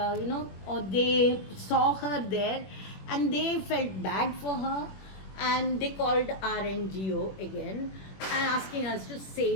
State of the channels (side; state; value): right; late; 21 ms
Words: or they saw her there, and they felt bad for her, and they called our NGO again, and asking us to